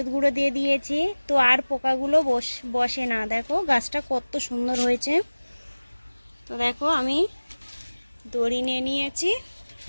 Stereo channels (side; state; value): both; inverted; correlation -1.00